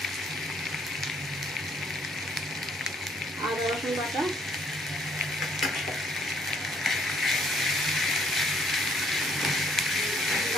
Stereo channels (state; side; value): normal; both; correlation 0.66